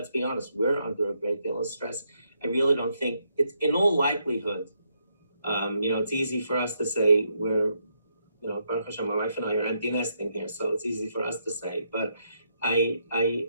be honest, we're under a great deal of stress. I really don't think it's, in all likelihood, it's easy for us to say we're, Baruch Hashem, my wife and I are empty nesting here, so it's easy for us to say, but I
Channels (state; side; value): inverted; both; correlation -0.77